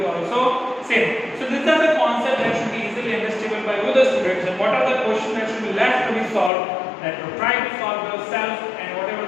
also same. So these are the concepts that should be easily understandable by all the students. And what are the questions that should be left to be solved? That you try to solve yourself, and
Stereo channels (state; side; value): drops out; right; at 6.5 s